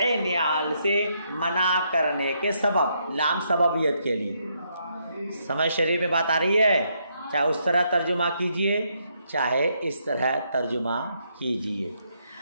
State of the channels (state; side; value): inverted; both; correlation -0.76